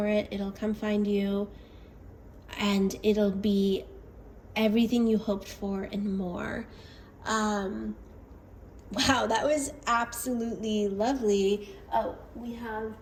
it. It'll come find you, and it'll be everything you hoped for and more. Wow, that was absolutely lovely. Oh, we have,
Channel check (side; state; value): both; identical; correlation 1.00